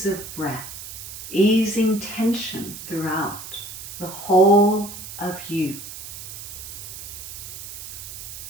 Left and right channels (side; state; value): right; noise; hiss, 11 dB below the sound